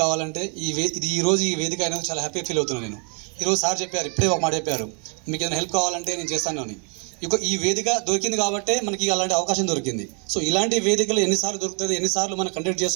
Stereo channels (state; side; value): quieter; left; 38.6 dB